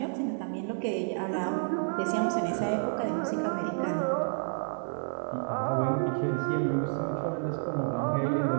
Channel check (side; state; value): left; silent; digital silence